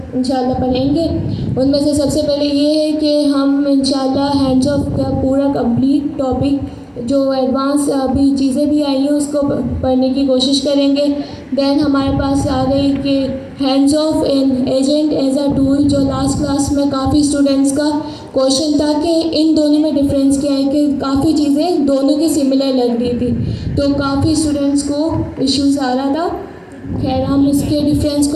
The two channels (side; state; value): both; identical; correlation 1.00